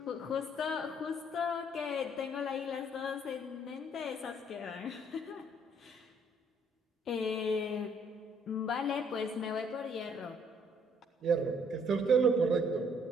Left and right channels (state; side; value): normal; both; correlation 0.64